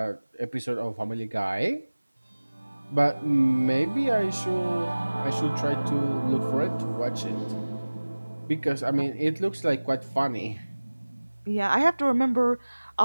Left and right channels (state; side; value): inverted; both; correlation -1.00